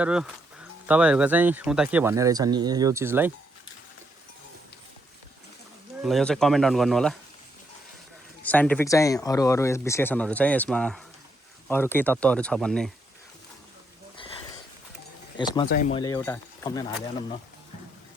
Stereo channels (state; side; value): normal; both; correlation 0.77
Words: तपाईहरुको चाहिँ उता के भन्ने रहेछ नि यो चीजलाई ल यो चाहिँ कमेन्ट डाउन गर्नु होला साइन्टिफिक चाहिँ अरू विश्लेषणहरू चाहिँ यसमा अरू केही तत्त्वहरू छ भन्ने। यसमा चाहिँ मैले एउटा थम्बनेल हालिहालौँ न।